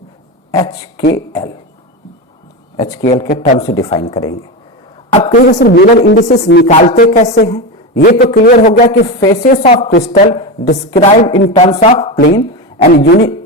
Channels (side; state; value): both; normal; correlation 0.18